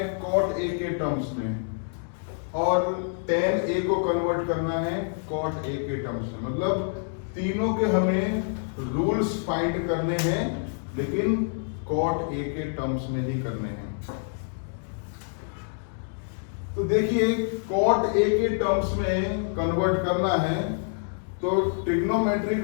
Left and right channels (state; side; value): silent; right; digital silence